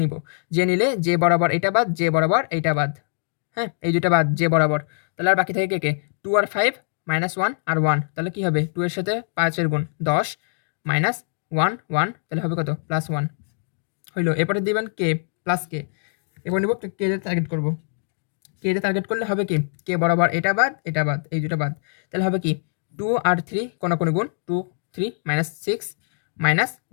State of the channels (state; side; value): silent; right; digital silence